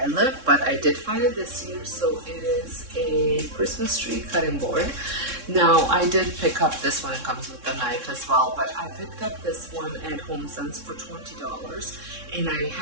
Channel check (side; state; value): left; late; 3.6 ms